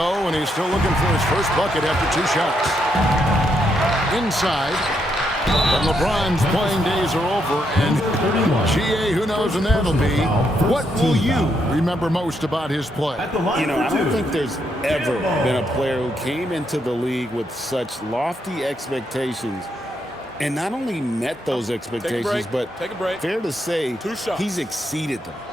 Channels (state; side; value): normal; both; correlation 0.78